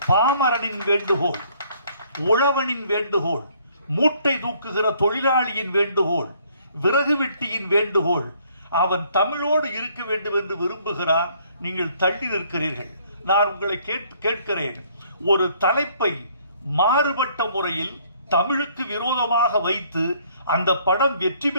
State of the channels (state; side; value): inverted; both; correlation -0.63